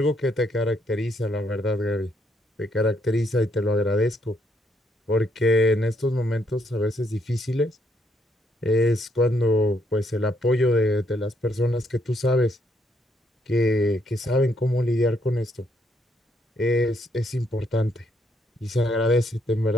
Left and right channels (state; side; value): normal; both; correlation 0.73